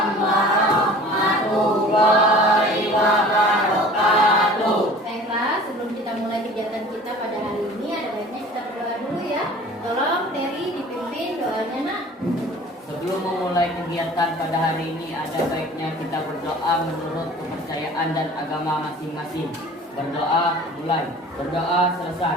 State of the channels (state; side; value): normal; both; correlation 0.45